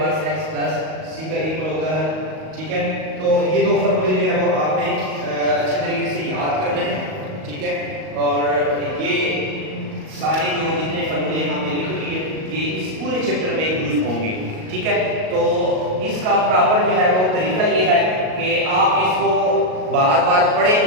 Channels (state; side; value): late; left; 38 ms